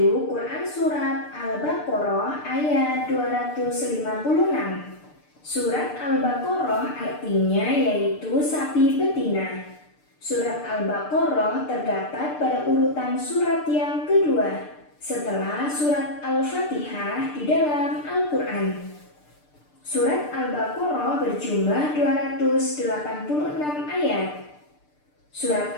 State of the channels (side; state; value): right; late; 6.7 ms